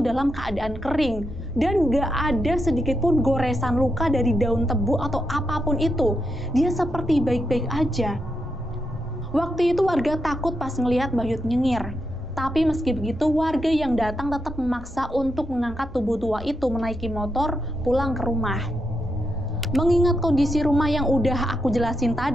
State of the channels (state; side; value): normal; both; correlation 0.83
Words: dalam keadaan kering dan gak ada sedikit pun goresan luka dari daun tebu atau apapun itu. Dia seperti baik-baik aja. Waktu itu warga takut pas ngelihat Bahyut nyengir. Tapi meski begitu, warga yang datang tetap memaksa untuk mengangkat tubuh tua itu menaiki motor pulang ke rumah. Mengingat kondisi rumah yang udah aku jelasin